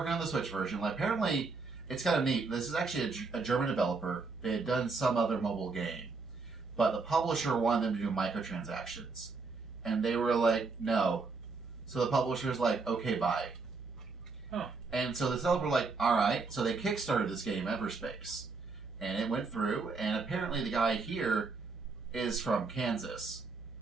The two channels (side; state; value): left; quieter; 4.2 dB